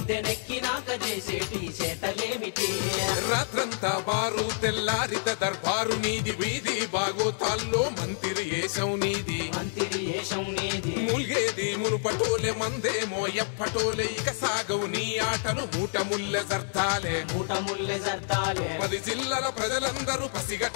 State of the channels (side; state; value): right; silent; digital silence